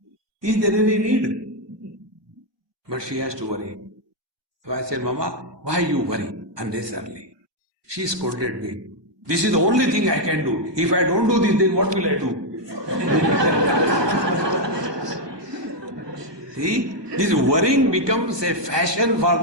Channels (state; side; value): late; left; 1.2 ms